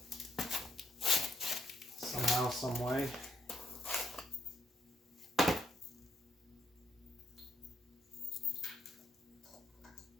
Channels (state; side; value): normal; both; correlation 0.75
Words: somehow, some way.